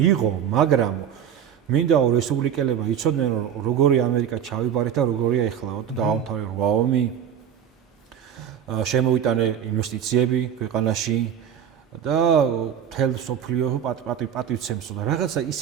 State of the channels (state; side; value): quieter; left; 8.9 dB